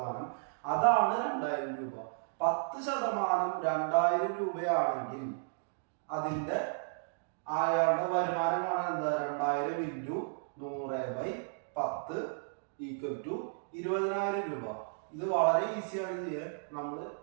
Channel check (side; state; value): left; silent; digital silence